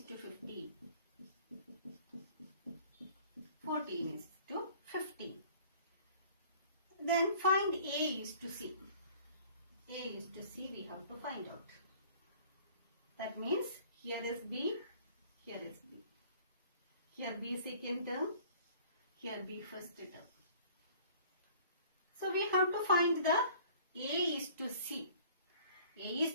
to 15. 14 is to 15. Then find A is to C. A is to C we have to find out. That means here is B, here is B. Here B second term, here B first term. So we have to find the A is to C. A is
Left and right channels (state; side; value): inverted; both; correlation -0.51